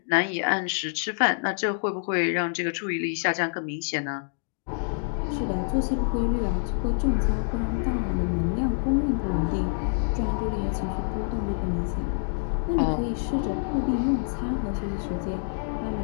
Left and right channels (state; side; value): silent; right; digital silence